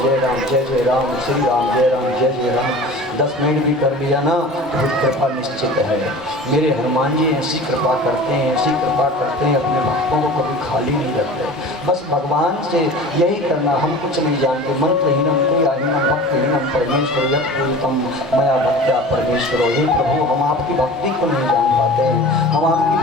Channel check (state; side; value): normal; both; correlation 0.38